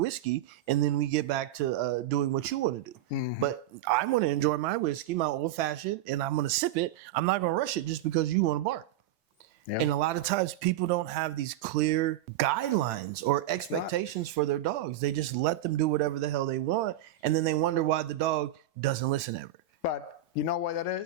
And then we get back to doing what you want to do. Mm-hmm. But I want to enjoy my whiskey, my old fashioned, and I'm going to sip it. I'm not going to rush it just because you want to bark. Yep. And a lot of times people don't have these clear guidelines or expectations for their dogs. They just let them do whatever the hell they want. And then they wonder why the dog doesn't listen ever. But you know what that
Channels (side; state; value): left; quieter; 10.7 dB